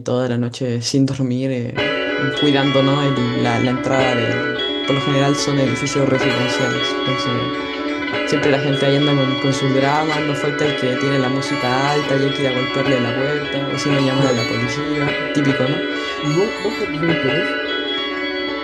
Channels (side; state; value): both; identical; correlation 1.00